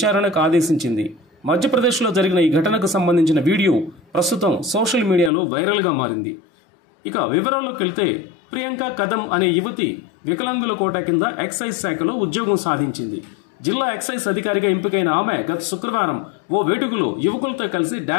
ఆదేశించింది. మధ్యప్రదేశ్లో జరిగిన ఈ ఘటనకు సంబంధించిన వీడియో ప్రస్తుతం సోషల్ మీడియాలో వైరల్గా మారింది. ఇక వివరాల్లోకి వెళ్తే, ప్రియాంక కదం అనే యువతి వికలాంగుల కోటా కింద ఎక్సైజ్ శాఖలో ఉద్యోగం సాధించింది. జిల్లా ఎక్సైజ్ అధికారిగా ఎంపికైన ఆమె గత శుక్రవారం ఓ వేడుకలో యువకులతో కలిసి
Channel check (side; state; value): right; drops out; at 5.3 s